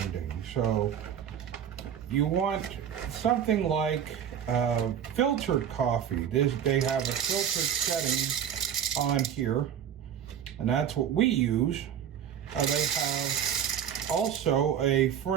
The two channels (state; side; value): quieter; left; 9.0 dB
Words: So you want something like filtered coffee. They have a filtered setting on here, and that's what we use. They have also a